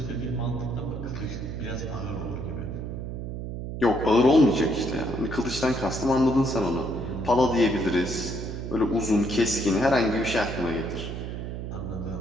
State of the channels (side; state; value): right; noise; hum, 6 dB below the sound